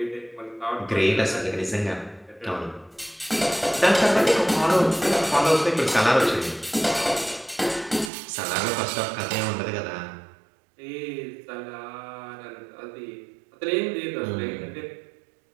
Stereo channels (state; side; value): drops out; left; at 8.1 s